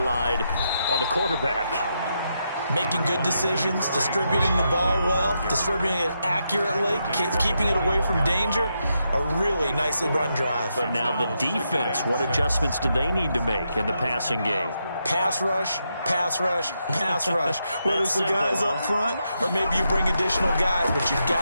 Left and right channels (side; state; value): both; inverted; correlation -0.82